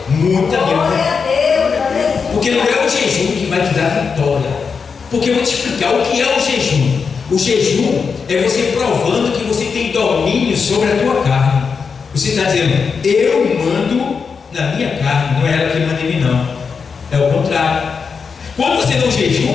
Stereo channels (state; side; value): quieter; right; 5.6 dB